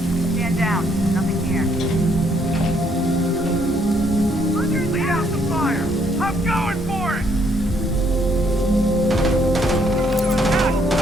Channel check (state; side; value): normal; both; correlation 0.69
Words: Stand down. Nothing here. Lead out the fire. I'm going for it.